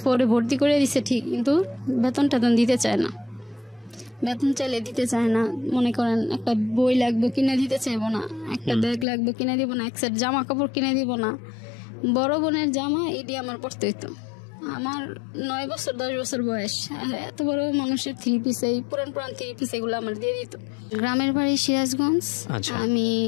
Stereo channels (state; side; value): drops out; right; at 9.1 s